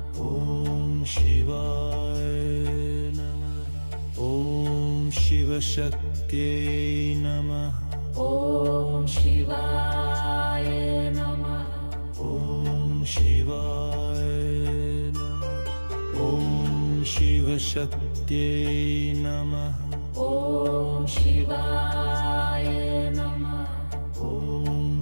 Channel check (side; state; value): both; inverted; correlation -1.00